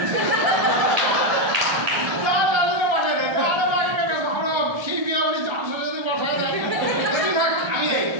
সেই বিয়ে বাড়ি যাওয়ার সাথে সাথে বসায় দেয়। থাক আমি দেয়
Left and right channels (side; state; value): left; late; 1.3 ms